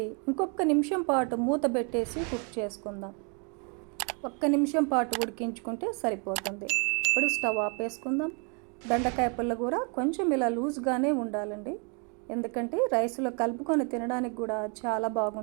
ఇంకొక నిమిషం పాటు మూత పెట్టేసి కుక్ చేసుకుందాం. 1 నిమిషం పాటు ఉడికించుకుంటే సరిపోతుంది. ఇప్పుడు స్టవ్ ఆపేసుకుందాం. బెండకాయ పుల్లగూర కొంచెం ఇలా లూజ్గానే ఉండాలండి, ఎందుకంటే రైస్లో కలుపుకొని తినడానికి కూడా చాలా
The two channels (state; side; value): quieter; left; 36.0 dB